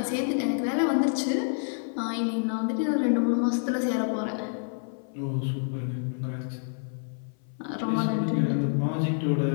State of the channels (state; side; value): silent; right; 57 dB below the other